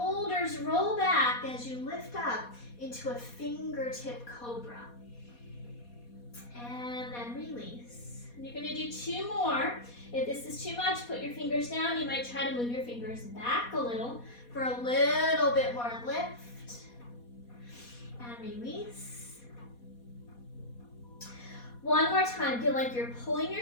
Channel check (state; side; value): late; right; 4.2 ms